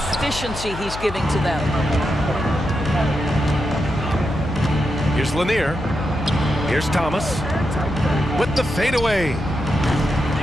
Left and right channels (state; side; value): noise; left; hum, 10 dB below the sound